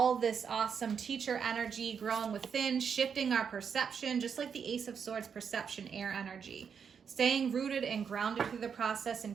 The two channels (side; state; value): left; quieter; 6.8 dB